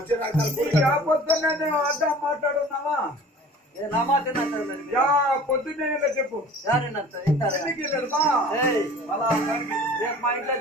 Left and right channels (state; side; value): normal; both; correlation 0.45